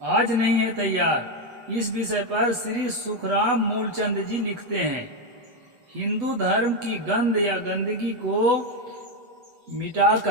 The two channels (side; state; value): left; late; 8.1 ms